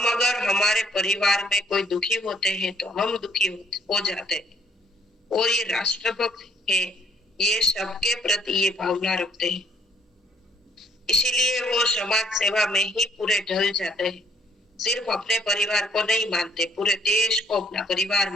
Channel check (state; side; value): normal; both; correlation 0.64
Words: अगर हमारे परिवार में कोई दुखी होते हैं तो हम दुखी हो जाते हैं। और ये राष्ट्र भक्त है, ये सबके प्रति ये भावना रखते हैं, इसीलिए वो समाज सेवा में ही पूरे ढल जाते हैं। सिर्फ अपने परिवार को नहीं मानते, पूरे देश को अपना परिवार